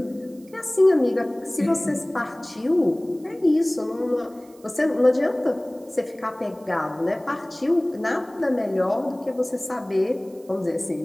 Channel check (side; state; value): right; noise; hiss, 28 dB below the sound